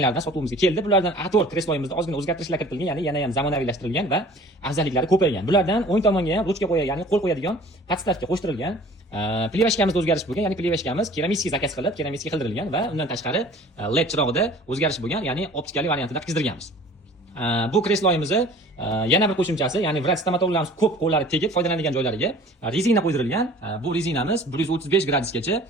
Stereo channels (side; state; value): both; normal; correlation 0.47